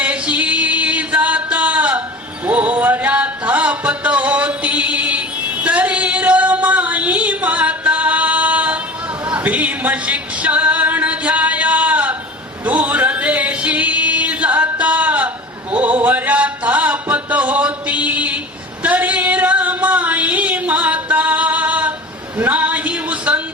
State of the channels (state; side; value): normal; both; correlation 0.37